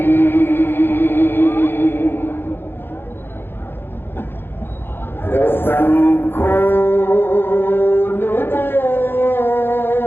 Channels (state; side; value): late; right; 0.10 ms